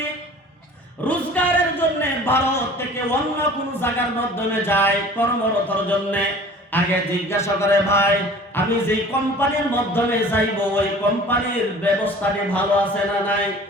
রোজগারের জন্য ভারত থেকে অন্য কোনো জায়গার মাধ্যমে যায় কর্মরতর জন্য, আগে জিজ্ঞাসা করে ভাই আমি যে কোম্পানির মাধ্যমে যাইব ওই কোম্পানির ব্যবস্থাটি ভালো আছে না নাই,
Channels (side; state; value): both; normal; correlation 0.45